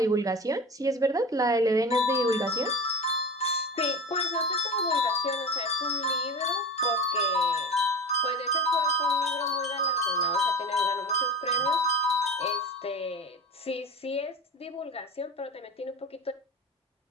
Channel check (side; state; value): both; normal; correlation 0.30